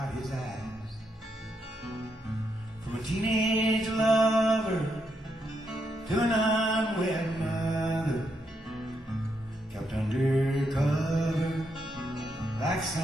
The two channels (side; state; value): both; normal; correlation 0.80